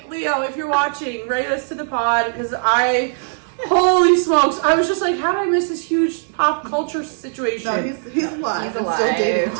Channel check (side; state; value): left; silent; 66 dB below the other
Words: Leo, if you're watching, write us to the pod, because holy smokes, I was just like, how did I miss this huge pop culture situation? No, he's alive. He's and alive. still dating